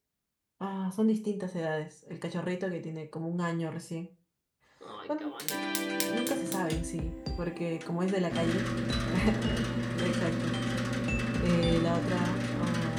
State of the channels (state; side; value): identical; both; correlation 1.00